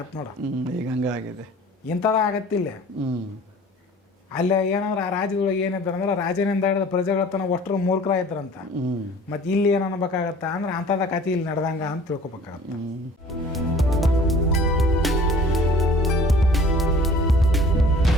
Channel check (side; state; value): both; normal; correlation 0.48